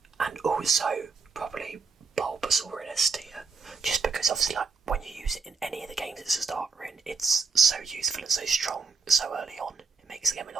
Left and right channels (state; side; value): quieter; left; 4.8 dB